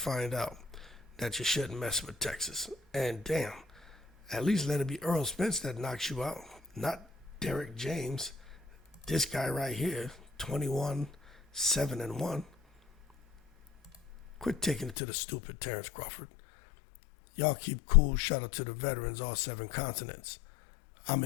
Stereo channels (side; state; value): right; drops out; at 15.0 s